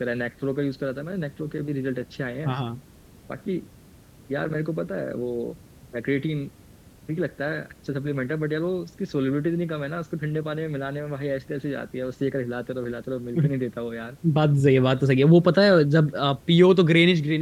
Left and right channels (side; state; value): both; identical; correlation 1.00